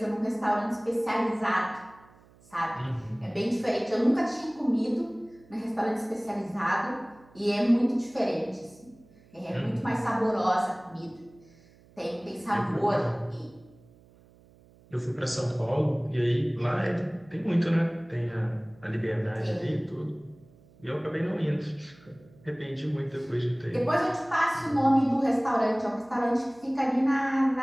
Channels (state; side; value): noise; right; hum, 27 dB below the sound